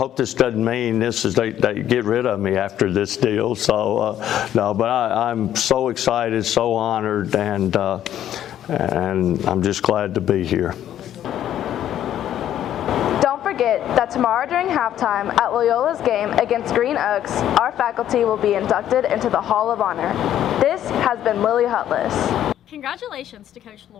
this doesn't mean they get rid of me after this deal. So no, but I'm so excited, so honored, and I'm just glad to be here. Don't forget that tomorrow during halftime at Loyola's game against Green Oaks, our faculty will be inducted into the Hall of Honor. This has been Lily Hutless. Congratulations to Coach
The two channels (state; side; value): quieter; right; 11.2 dB